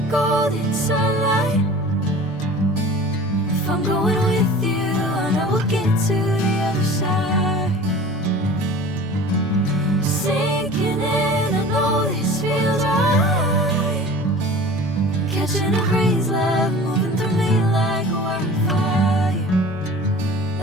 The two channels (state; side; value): normal; both; correlation 0.41